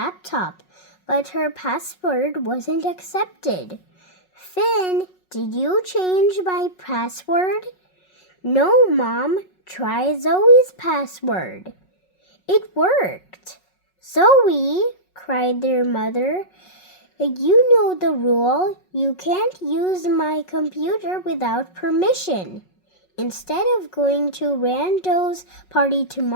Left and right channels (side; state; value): right; late; 5.4 ms